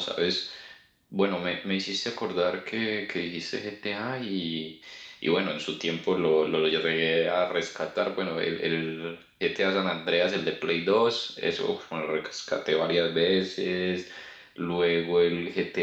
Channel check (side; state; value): both; identical; correlation 1.00